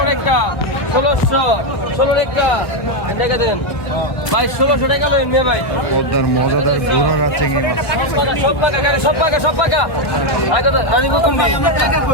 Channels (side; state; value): right; late; 1.2 ms